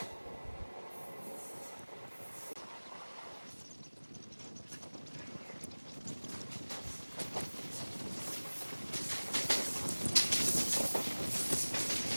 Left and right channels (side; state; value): both; inverted; correlation -1.00